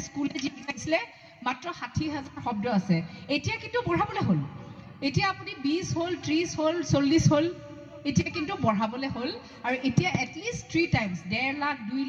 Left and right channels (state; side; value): identical; both; correlation 1.00